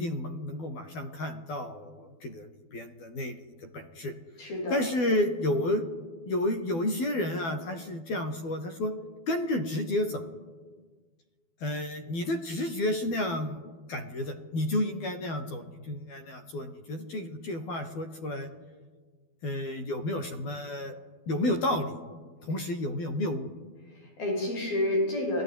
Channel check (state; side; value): late; right; 12 ms